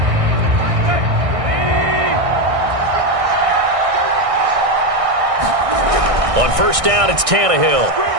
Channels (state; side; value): late; left; 1.6 ms